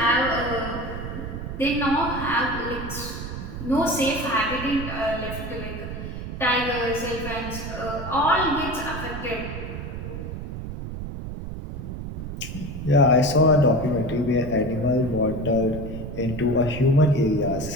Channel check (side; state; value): right; noise; rumble, 7 dB below the sound